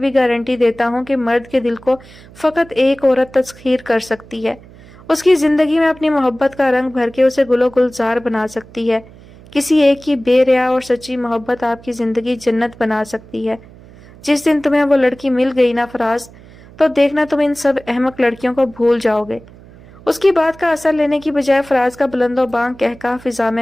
گارنٹی دیتا ہوں کہ مرد کے دل کو فقط ایک عورت تسخیر کر سکتی ہے، اس کی زندگی میں اپنی محبت کا رنگ بھر کے اسے گل و گلزار بنا سکتی ہے۔ کسی ایک کی بے ریا اور سچی محبت آپ کی زندگی جنت بنا سکتی ہے۔ جس دن تمہیں وہ لڑکی مل گئی نا فراز، تو دیکھنا تم ان سب احمق لڑکیوں کو بھول جاؤ گے۔ اس کی بات کا اثر لینے کی بجائے فراز کا بلند و بانگ کہکہا فضا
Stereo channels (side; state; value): right; noise; hum, 22 dB below the sound